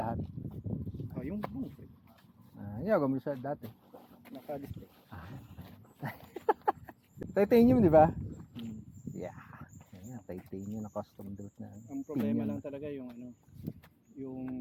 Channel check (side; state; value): both; identical; correlation 1.00